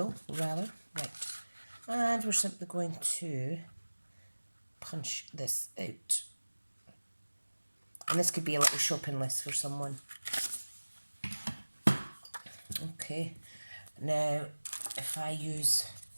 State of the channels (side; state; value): both; inverted; correlation -1.00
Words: rather, right. And we're simply going to punch this out. And this could be a little shopping list for someone. Okay, now if I use